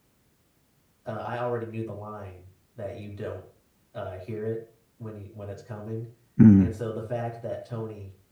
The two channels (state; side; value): identical; both; correlation 1.00